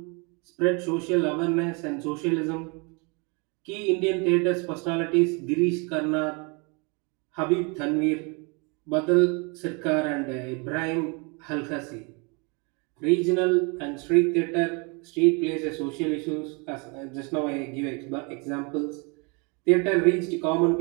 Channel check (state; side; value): quieter; left; 32.0 dB